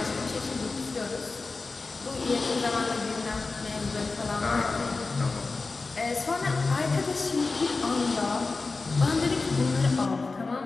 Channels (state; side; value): quieter; right; 3.8 dB